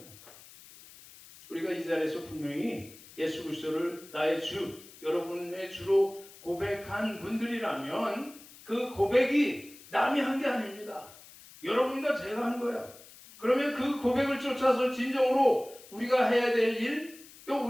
우리가 이 자리에서 분명히 예수 그리스도를 나의 주, 여러분의 주로 고백한 분들이라면 그 고백이 남이 한 게 아닙니다. 여러분과 제가 한 거야. 그러면 그 고백을 쫓아서 진정으로 우리가 해야 될 일, 또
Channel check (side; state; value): left; noise; hiss, 20 dB below the sound